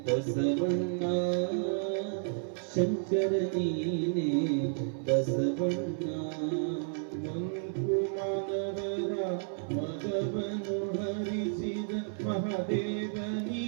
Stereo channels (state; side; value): silent; left; 57 dB below the other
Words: ಬಸವಣ್ಣ ಶಂಕರ ನೀನೆ ಬಸವಣ್ಣ ಮಂಕುಮಾನವರ ಮಗವನು ಹರಿಸಿದ ಮಹಾದೇವ